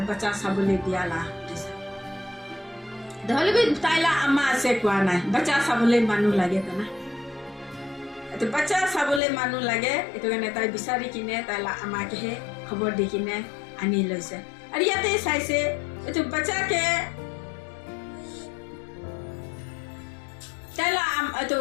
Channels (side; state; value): right; drops out; at 9.2 s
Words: বাচ্চা চাবলে দিয়ালা নহলে বি তাইলা আমা আছে কোৱা নাই বাচ্চা চাবলে মানুহ লাগে তো না তো বাচ্চা চাবলে মানুহ লাগে এটো কাৰণে তাই বিচাৰি কিনে তাইলা আমাকে হে খবৰ দি কিনে আনি লৈছে আৰু ইয়াতে চাইছে এটো বাচ্চাকে তাইলা এটো